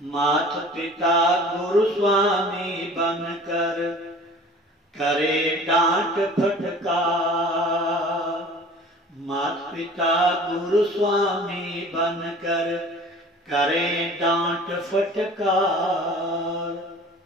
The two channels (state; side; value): normal; both; correlation 0.45